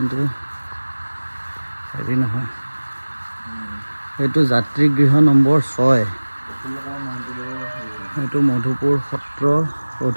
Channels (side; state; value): both; inverted; correlation -1.00